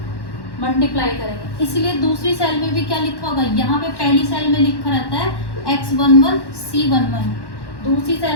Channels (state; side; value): late; right; 1.1 ms